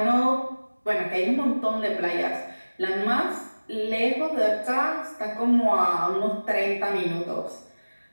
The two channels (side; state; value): both; inverted; correlation -1.00